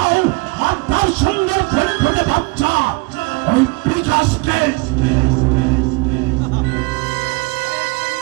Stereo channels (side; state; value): left; quieter; 26.4 dB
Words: আর তার সুন্দর ফুটফুটে বাচ্চা ওই বিকাশকে